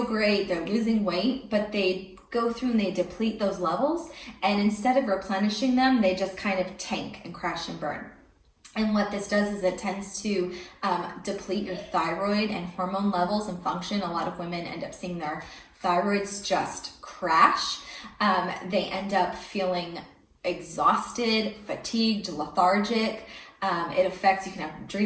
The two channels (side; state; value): both; identical; correlation 1.00